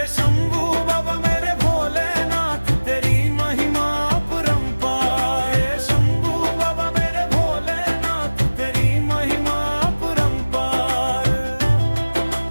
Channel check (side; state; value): both; inverted; correlation -1.00